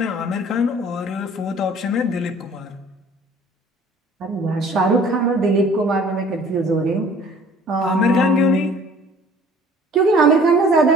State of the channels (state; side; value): normal; both; correlation 0.51